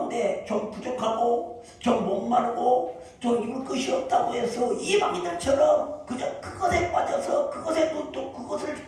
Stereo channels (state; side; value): identical; both; correlation 1.00